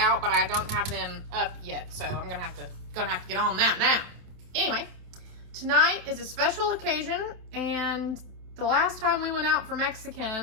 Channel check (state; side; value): late; left; 27 ms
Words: but I don't have them up yet, so I'm gonna have to get on that now. Anyway, tonight is a special occasion, and the last time we went out for